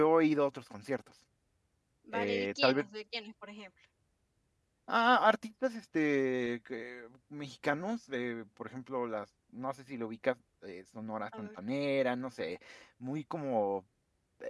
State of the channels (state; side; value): identical; both; correlation 1.00